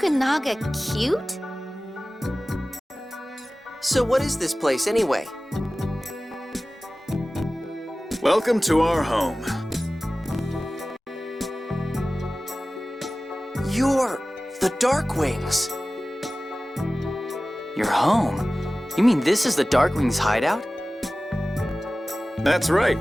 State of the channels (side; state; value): both; normal; correlation 0.97